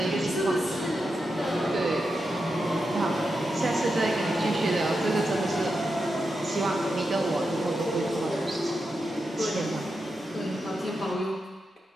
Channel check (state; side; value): normal; both; correlation 0.87